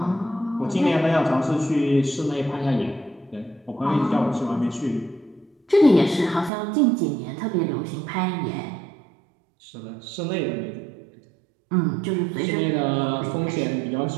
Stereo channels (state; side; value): drops out; left; at 6.5 s